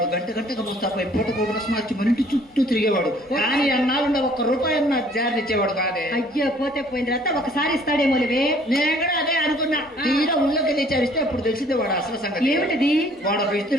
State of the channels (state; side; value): normal; both; correlation 0.58